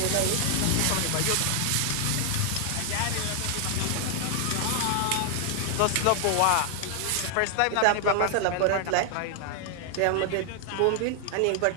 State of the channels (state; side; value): different; both; correlation 0.00